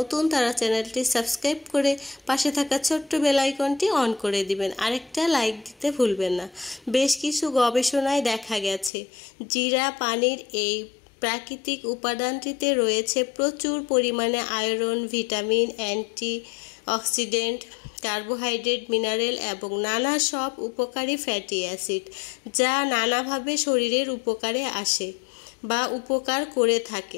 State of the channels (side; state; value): right; drops out; at 8.9 s